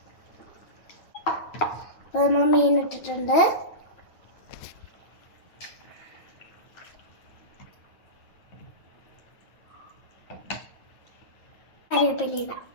അപ്പൊ നമ്മൾ മീൻ ഇട്ടിട്ടുണ്ട്. കറിവേപ്പില ഇടാം.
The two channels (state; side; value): late; right; 9.1 ms